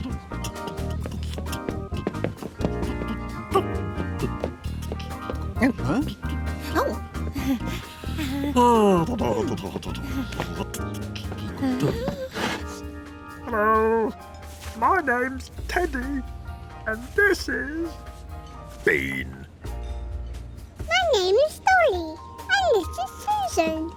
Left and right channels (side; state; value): both; identical; correlation 1.00